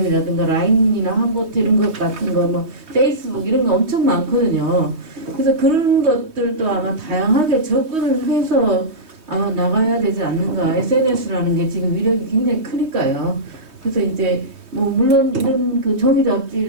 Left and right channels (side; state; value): left; late; 3.2 ms